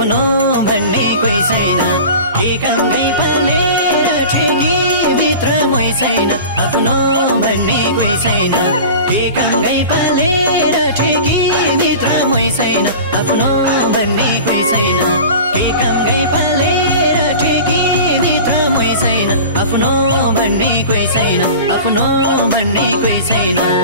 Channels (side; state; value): both; inverted; correlation -0.36